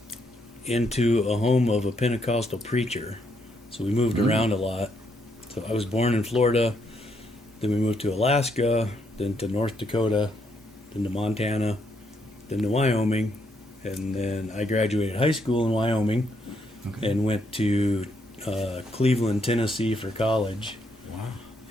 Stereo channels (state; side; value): normal; both; correlation 0.75